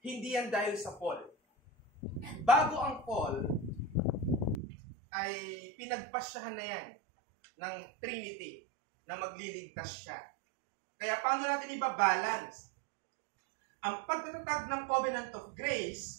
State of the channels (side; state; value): left; drops out; at 4.6 s